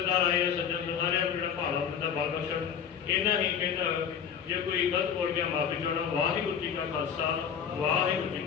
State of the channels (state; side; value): quieter; right; 7.8 dB